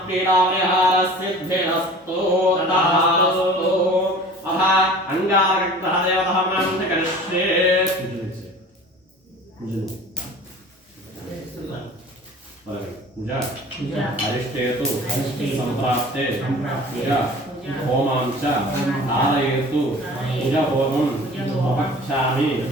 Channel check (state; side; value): normal; both; correlation 0.43